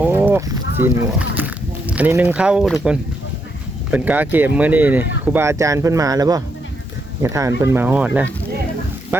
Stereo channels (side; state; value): both; normal; correlation 0.79